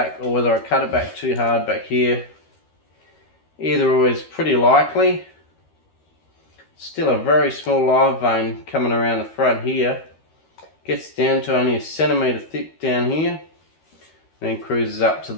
or whether I cut it back too hard back here. Either way is pretty likely. Still a very small live vein coming around the front here. Gets down to only 1 centimetre thick down here. Then cruises up to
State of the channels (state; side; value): late; right; 13 ms